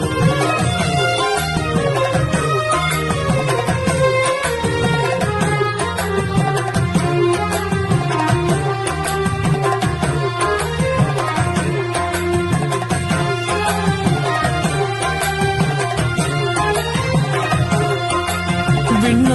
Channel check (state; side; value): identical; both; correlation 1.00